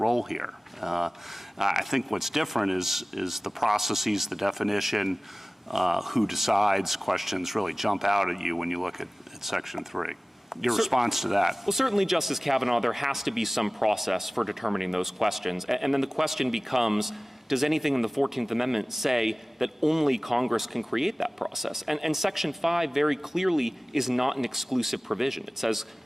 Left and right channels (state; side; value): normal; both; correlation 0.97